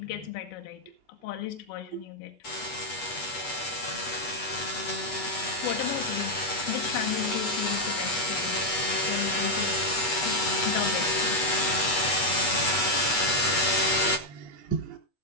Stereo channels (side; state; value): right; late; 8.2 ms